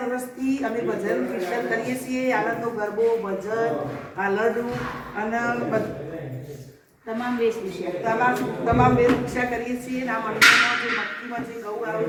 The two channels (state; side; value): identical; both; correlation 1.00